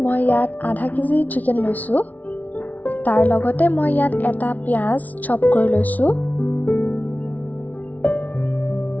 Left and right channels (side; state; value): right; late; 0.074 ms